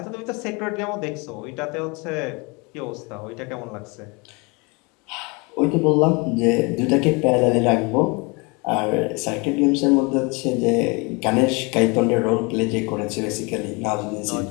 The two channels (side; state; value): right; quieter; 28.9 dB